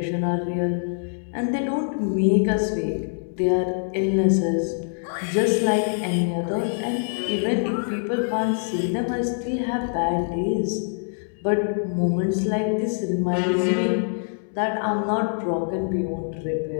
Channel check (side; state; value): right; silent; digital silence